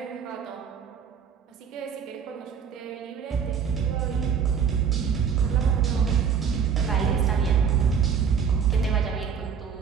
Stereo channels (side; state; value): left; quieter; 7.1 dB